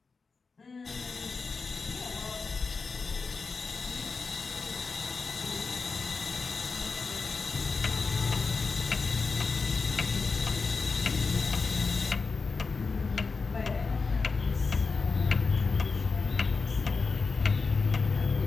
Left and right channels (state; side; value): quieter; right; 4.6 dB